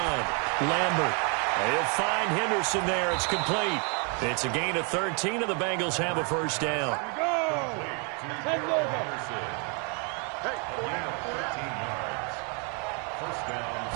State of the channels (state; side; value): quieter; left; 36.9 dB